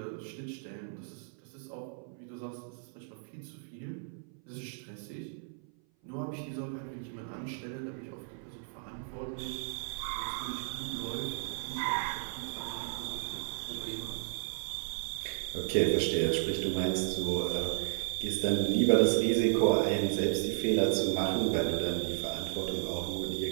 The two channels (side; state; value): left; silent; 55 dB below the other